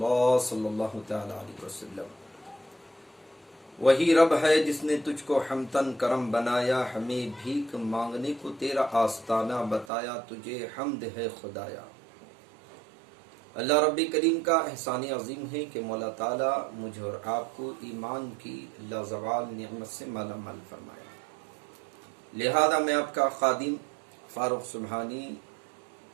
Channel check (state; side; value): drops out; left; at 9.9 s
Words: صلی اللہ تعالی علیہ وسلم۔ وہی رب ہے جس نے تجھ کو حمدن کرم بنایا، ہمیں بھیک مانگنے کو تیرا آستانہ بتایا، تجھے حمد ہے خدایا۔ اللہ رب کریم کا احسان عظیم ہے کہ مولا تعالیٰ مجھے اور آپ کو ایمان کی لازوال نعمت سے مالا مال فرمایا۔ لہذا میں آپ کا خادم فاروق سبحانی